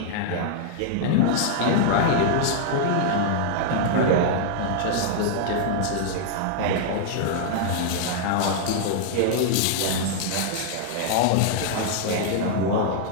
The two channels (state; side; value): different; both; correlation -0.01